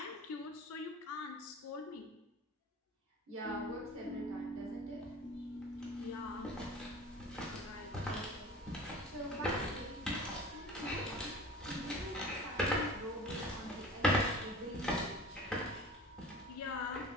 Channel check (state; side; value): normal; both; correlation 0.39